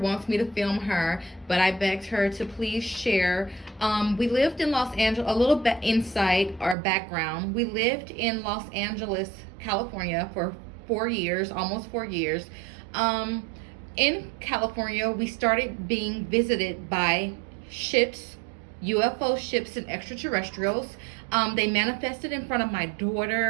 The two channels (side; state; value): left; drops out; at 6.8 s